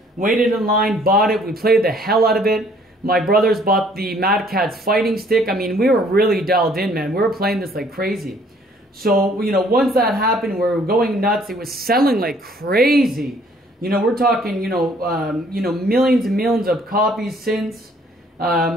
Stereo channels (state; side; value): normal; both; correlation 0.60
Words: waited in line, bought it, we played the hell out of it. My brothers bought the Mad Catz fighting stick. I mean, we were really dialed in, man. We were playing this like crazy. So, once that happened, we were going nuts. It was selling like crazy. We're talking, millions and millions of copies since.